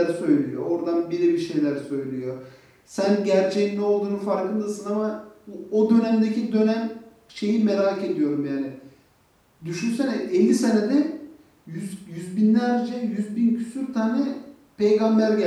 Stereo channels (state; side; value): identical; both; correlation 1.00